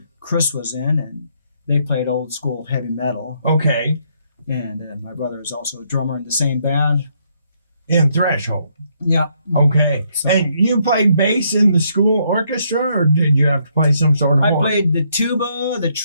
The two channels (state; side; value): inverted; both; correlation -0.73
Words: Chris was in, and they played old school heavy metal. Okay. And my brother is also a drummer in the same band. In Threshold? Yeah. Okay. So, and you played bass in the school orchestra, or did you have to play some sort of horn? I played the tuba, the